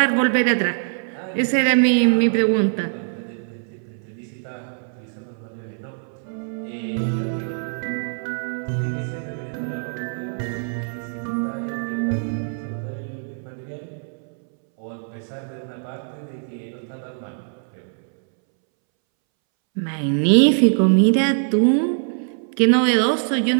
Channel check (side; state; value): left; silent; 64 dB below the other